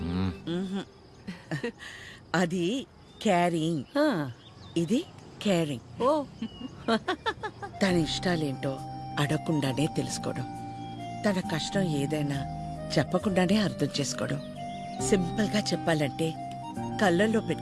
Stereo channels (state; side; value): identical; both; correlation 1.00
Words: అది క్యారింగ్, ఆ, ఇది కేరింగ్. ఓ తన ఇష్టాలేంటో అడగకుండానే తెలుసుకోవడం, తన కష్టం ఏదైనా చెప్పకుండానే అర్థం చేసుకోవడం, సింపుల్ గా చెప్పాలంటే కళ్ళల్లో